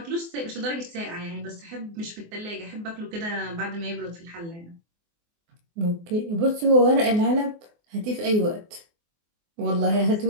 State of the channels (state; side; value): late; left; 24 ms